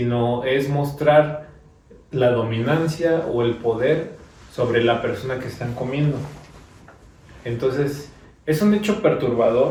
es mostrar la dominancia o el poder sobre la persona que están comiendo. Entonces, es un hecho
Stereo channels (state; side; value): identical; both; correlation 1.00